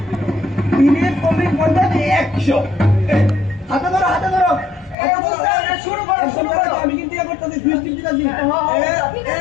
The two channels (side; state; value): right; drops out; at 5.0 s